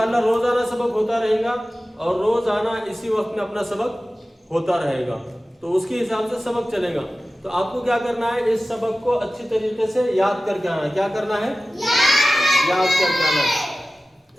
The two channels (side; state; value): both; normal; correlation 0.96